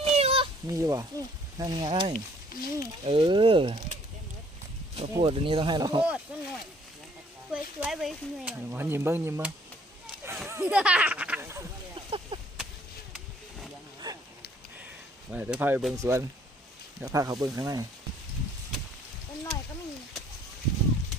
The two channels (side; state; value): both; normal; correlation 0.60